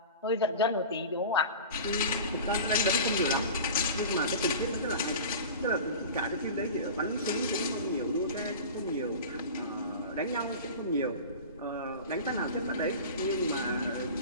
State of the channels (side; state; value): both; inverted; correlation -0.34